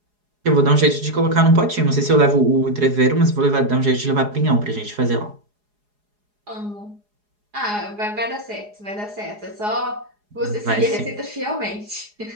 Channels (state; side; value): late; left; 4.8 ms